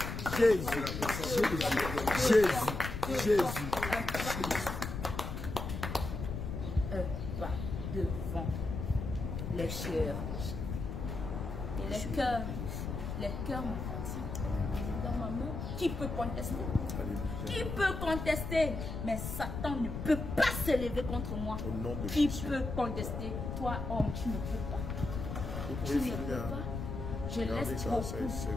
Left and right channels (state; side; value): noise; left; rumble, 5 dB below the sound